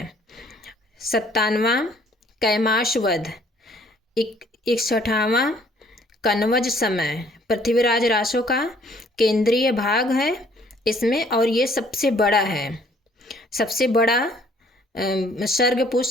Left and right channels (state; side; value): normal; both; correlation 0.60